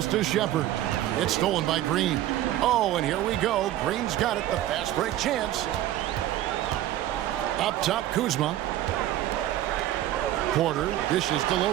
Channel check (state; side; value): quieter; left; 13.5 dB